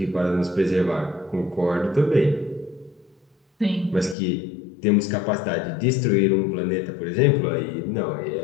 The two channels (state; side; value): drops out; right; at 4.2 s